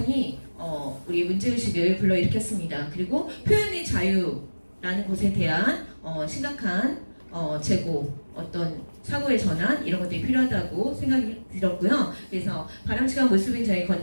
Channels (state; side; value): inverted; both; correlation -1.00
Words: 우리 문제의식을 불러일으켰습니다. 그리고 표현의 자유라는 것에 대한 심각한 재고, 어떤 사고의 전환 이런 것들이 필요하다고 생각이 들었고요. 그래서 바람직한 모습인 저희